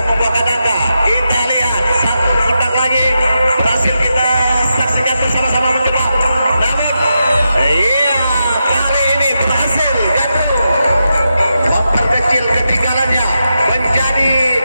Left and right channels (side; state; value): both; inverted; correlation -0.87